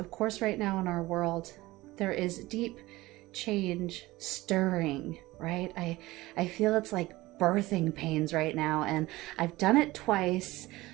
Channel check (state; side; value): quieter; left; 19.1 dB